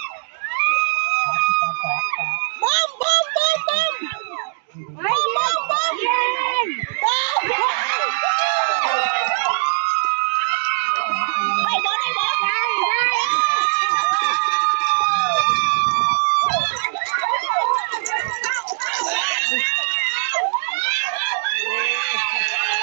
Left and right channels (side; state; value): left; silent; digital silence